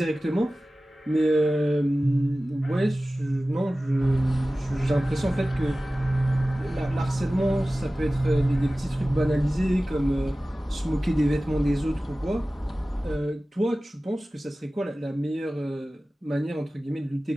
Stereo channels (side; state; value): both; normal; correlation 0.96